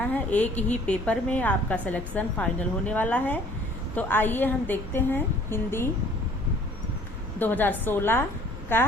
है। एक ही पेपर में आपका सिलेक्शन फाइनल होने वाला है। तो आइए हम देखते हैं हिंदी 2016 का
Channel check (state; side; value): normal; both; correlation 0.54